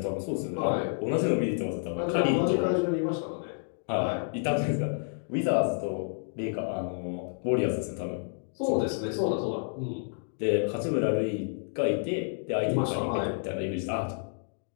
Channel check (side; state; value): right; silent; digital silence